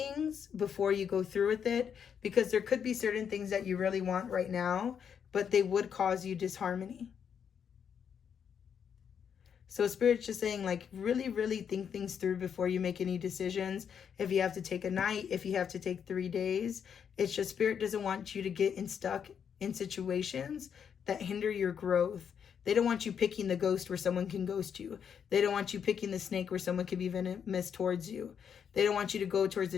before you go through with it, because there could be certain things that you really want right now, but they would cause you disharmony. So Spirit's just saying like, really, really think things through before you make any decisions. If you have to take a night, if you have to take 3 days, it's just Spirit doesn't want you to get stuck in situations that hinder your growth. They don't want you picking the ghost where someone can ghost you. They don't want you picking the snake where someone can be venomous towards you. They don't want you to go towards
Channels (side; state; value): right; quieter; 7.6 dB